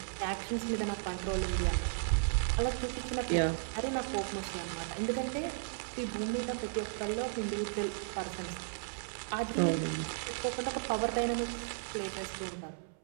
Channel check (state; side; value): silent; left; 55 dB below the other